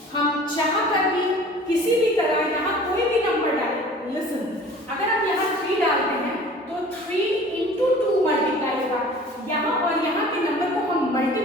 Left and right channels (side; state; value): both; normal; correlation 0.46